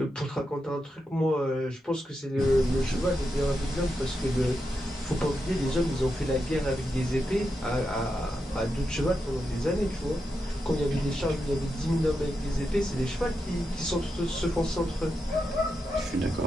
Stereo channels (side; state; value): both; normal; correlation 0.87